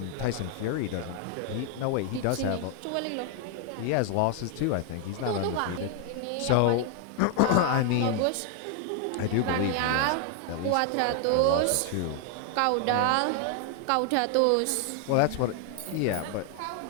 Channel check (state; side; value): different; both; correlation 0.00